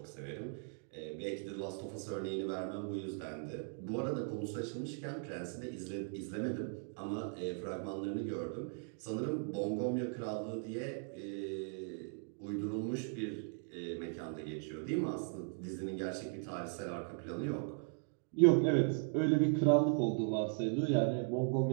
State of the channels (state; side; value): silent; left; 52 dB below the other